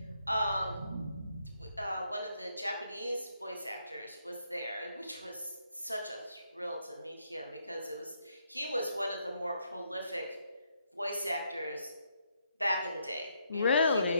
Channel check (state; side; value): inverted; both; correlation -0.76